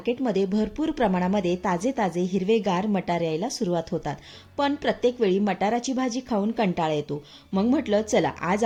भरपूर प्रमाणामध्ये ताजे ताजे हिरवेगार मटार यायला सुरुवात होतात. पण प्रत्येक वेळी मटाराची भाजी खाऊन कंटाळा येतो. मग म्हटलं चला आज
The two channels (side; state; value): both; identical; correlation 1.00